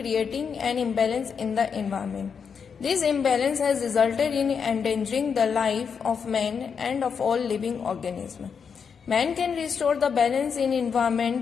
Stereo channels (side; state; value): right; quieter; 6.4 dB